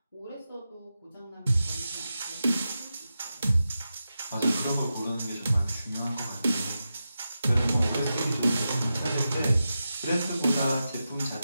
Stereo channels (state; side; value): inverted; both; correlation -0.90